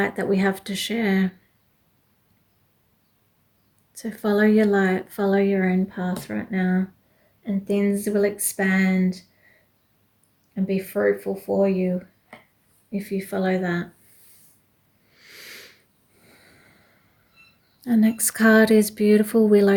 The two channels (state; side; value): identical; both; correlation 1.00